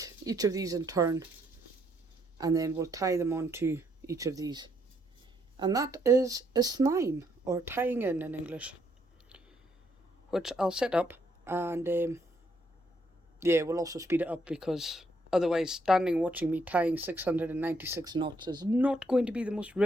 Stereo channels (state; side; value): normal; both; correlation 0.73